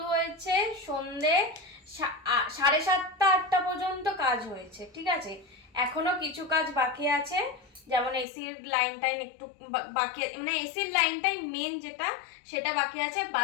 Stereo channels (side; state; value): right; drops out; at 8.2 s